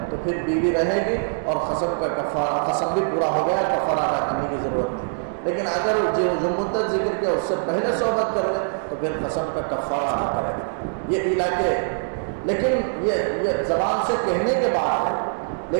تو پھر بیوی رہے گی اور قسم کا کفارہ، قسم بھی پورا ہو گیا، کفارہ ادا کرنے کی ضرورت نہیں۔ لیکن اگر جو مدت ذکر کیا اس سے پہلے صحبت کر لے تو پھر قسم کا کفارہ ادا کرے گا۔ یہ ایلا کے، لیکن یہ زبان سے کہنے کے بعد ہے۔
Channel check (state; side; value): silent; left; digital silence